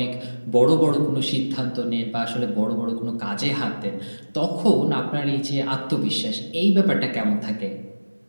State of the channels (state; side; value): inverted; both; correlation -1.00